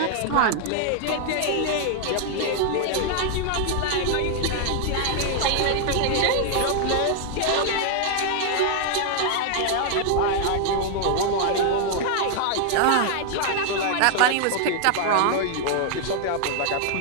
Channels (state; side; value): different; both; correlation 0.00